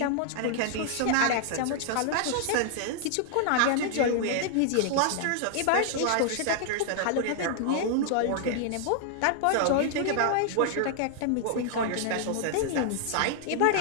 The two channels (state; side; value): different; both; correlation -0.01